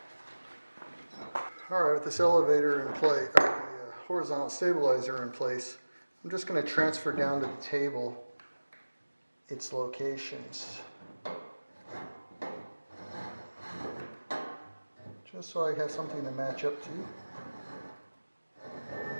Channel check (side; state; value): both; inverted; correlation -1.00